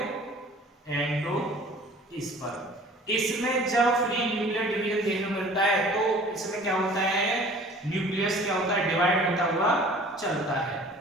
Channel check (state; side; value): normal; both; correlation 0.48